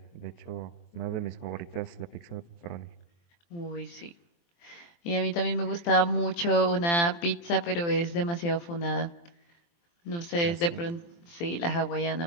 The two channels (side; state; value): right; late; 23 ms